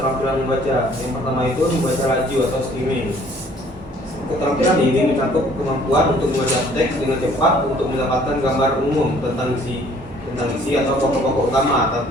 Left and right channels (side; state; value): both; normal; correlation 0.57